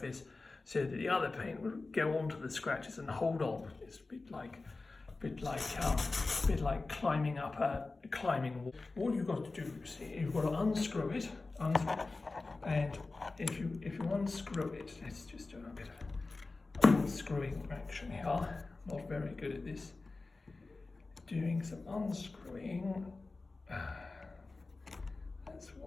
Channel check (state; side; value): quieter; right; 3.5 dB